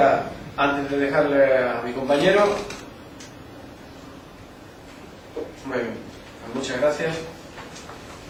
antes de dejarle a mi compañero. Muy bien, muchas gracias.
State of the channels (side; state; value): both; identical; correlation 1.00